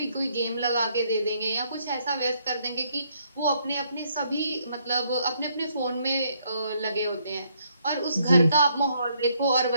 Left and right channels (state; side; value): inverted; both; correlation -0.71